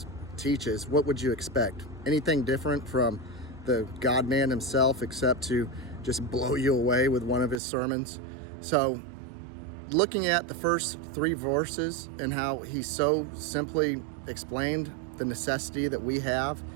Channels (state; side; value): drops out; left; at 7.6 s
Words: teaches. What would you expect? Anything different from the God-man himself, except to just blow you away with one of his sermons? So looking at the first three verses and how he so simply explained the necessity that we have